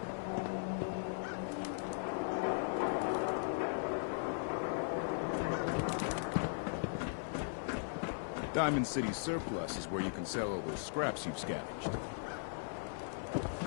Diamond City Surplus is where you can sell all those scraps you've scavenged.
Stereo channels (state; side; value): silent; right; 52 dB below the other